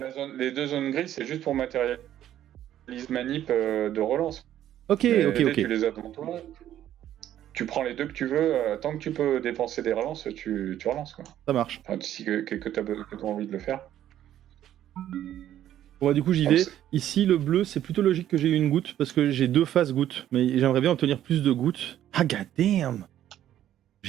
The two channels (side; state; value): left; quieter; 11.7 dB